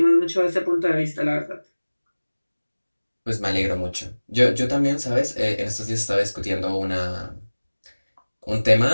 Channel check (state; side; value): inverted; both; correlation -1.00